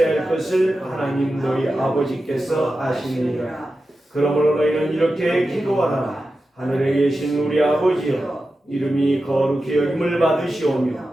할 것을 하나님 너희 아버지께서 아시느니라. 그러므로 너희는 이렇게 기도하라. 하늘에 계신 우리 아버지여, 이름이 거룩히 여김을 받으시오며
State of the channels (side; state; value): both; normal; correlation 0.92